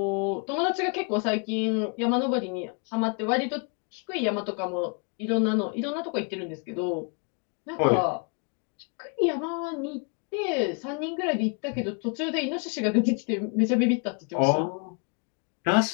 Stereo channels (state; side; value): quieter; right; 38.9 dB